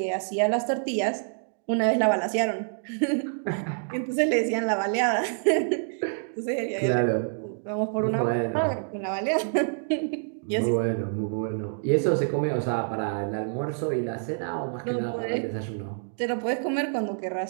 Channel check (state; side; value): silent; left; digital silence